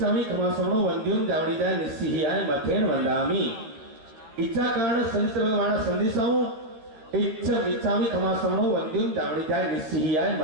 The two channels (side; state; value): left; late; 13 ms